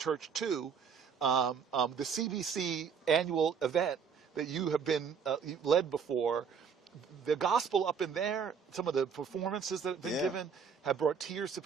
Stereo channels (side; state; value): left; quieter; 6.5 dB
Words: too. The CBC annual event that you have been led before. The gospel up in there, some of the performances that have been given have brought tears to